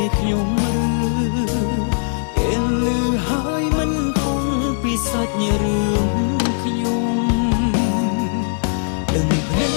ខ្ញុំពេលលឺហើយមិនគង់ពីសាច់រឿងខ្ញុំដឹងតែ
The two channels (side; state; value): right; silent; 66 dB below the other